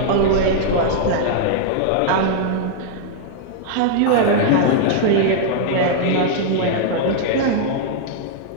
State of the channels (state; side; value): different; both; correlation -0.01